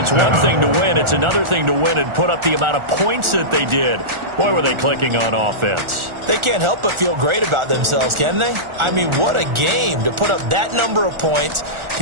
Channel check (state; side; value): late; left; 1.4 ms